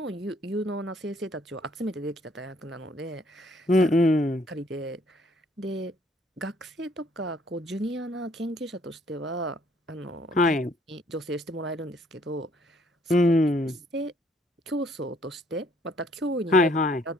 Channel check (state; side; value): normal; both; correlation 0.64